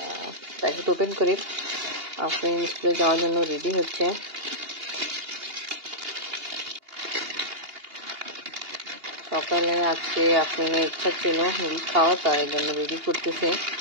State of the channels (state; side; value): late; left; 2.8 ms